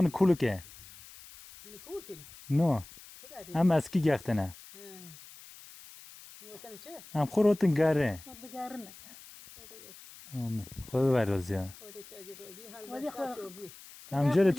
کولو که نو هم اسکی گختنه هم خورتن گره آمین خود برازی ها هم جره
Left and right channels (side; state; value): left; noise; hiss, 19 dB below the sound